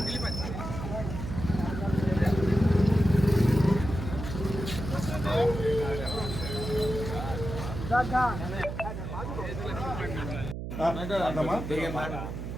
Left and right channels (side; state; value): right; noise; hum, 6 dB below the sound